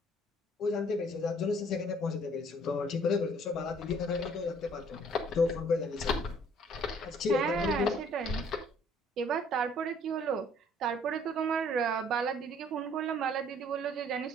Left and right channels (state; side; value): normal; both; correlation 0.59